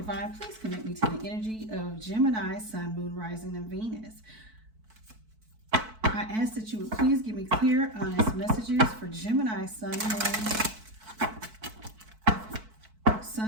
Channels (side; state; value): left; late; 4.6 ms